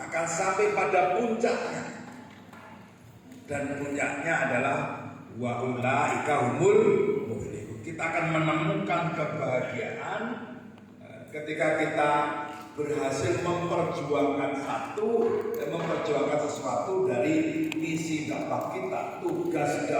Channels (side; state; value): both; identical; correlation 1.00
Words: sampai pada puncaknya. Dan puncaknya adalah wa ulaika humul muflihun. Kita akan menemukan kebahagiaan ketika kita berhasil memperjuangkan sesuatu dari misi dakwah kita, tugas